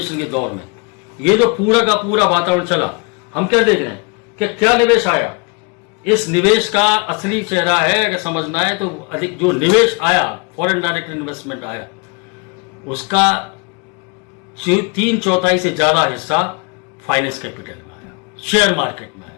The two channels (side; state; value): right; quieter; 32.3 dB